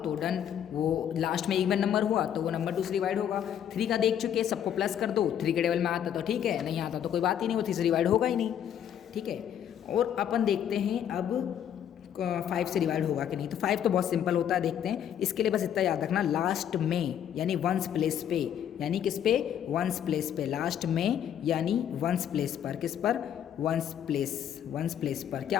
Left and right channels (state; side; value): quieter; right; 9.6 dB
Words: तो डन, वो लास्ट में इवन नंबर हुआ तो वो नंबर 2 से डिवाइड होगा। 3 का देख चुके, सबको प्लस कर दो, 3 के टेबल में आता तो ठीक है, नहीं आता तो कोई बात ही नहीं, वो 3 से डिवाइड होगा ही नहीं, ठीक है। और अपन देखते हैं अब 5 से डिवाइड होगा कि नहीं। तो 5 तो बहुत सिंपल होता है, देखते हैं। इसके लिए बस इतना याद रखना, लास्ट में यानी 1s प्लेस पे, यानी किस पे? 1s प्लेस पे, लास्ट में यानी 1s प्लेस पर, किस पर? 1s प्लेस पर क्या